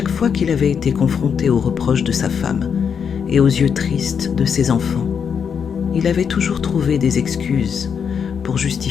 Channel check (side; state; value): right; quieter; 7.0 dB